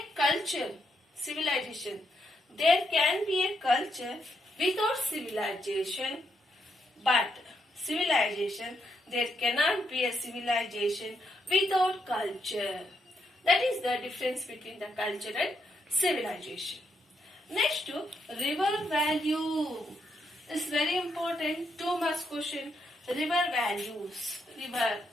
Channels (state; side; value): normal; both; correlation 0.78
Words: culture, civilization. There can be a culture without civilization, But civilization, there cannot be a civilization without culture. That is the difference between the culture and civilization. Next to river value. It's very important. 2 marks question. River values. River